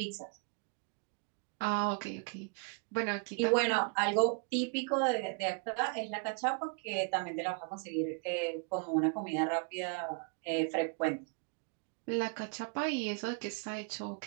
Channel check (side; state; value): left; quieter; 35.8 dB